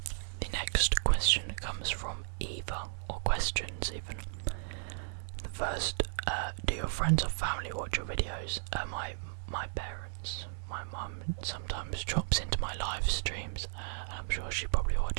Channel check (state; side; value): silent; left; digital silence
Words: The next question comes from Eva, or questions even. The first, do your friends or family watch your videos? My parents. My mum sometimes drops into my live streams, and I'm sure she probably